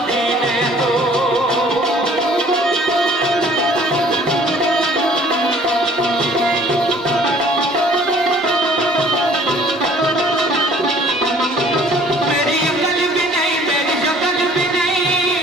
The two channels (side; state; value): both; normal; correlation 0.54